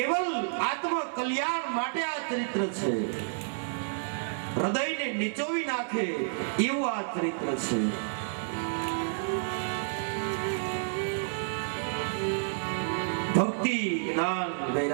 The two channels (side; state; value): left; silent; 58 dB below the other